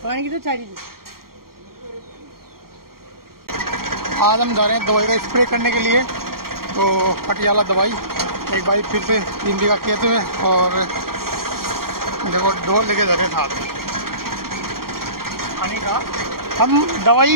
पानी की तो चाहिए। आज हम जा रहे हैं दवाई का स्प्रे करने के लिए। तो पटियाला दवाई एक भाई फिर से 3 बीघा खेत में, और देखो ढोल लेके जा रहे हैं साथ में पानी का। हम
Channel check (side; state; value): left; late; 0.93 ms